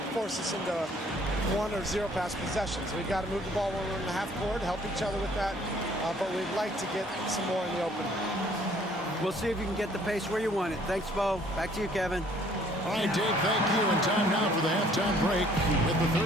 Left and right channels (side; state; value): both; normal; correlation 0.59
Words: force us into 1 or 0 pass possessions. We've got to move the ball when we're in the half court, help each other with that, but we'd like to get some more in the open. We'll see if you can get the pace where you want it. Thanks, Bo. Back to you, Kevin. All right, Dave, thank you. And time now for the halftime break with the